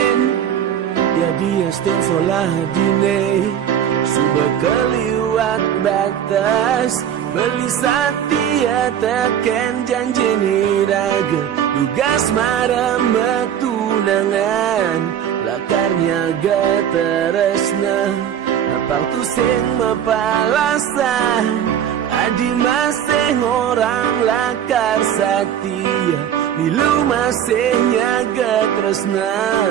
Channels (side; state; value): left; quieter; 9.5 dB